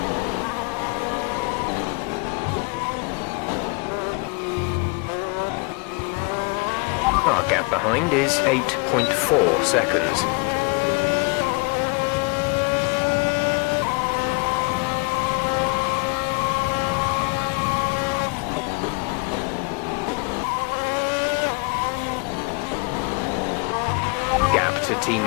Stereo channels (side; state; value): right; quieter; 28.8 dB